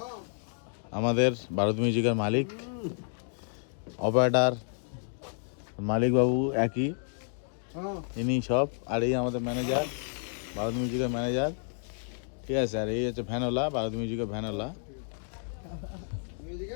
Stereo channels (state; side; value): silent; right; 57 dB below the other